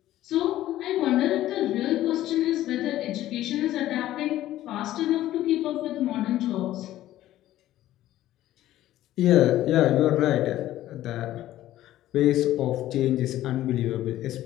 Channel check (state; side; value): quieter; right; 14.1 dB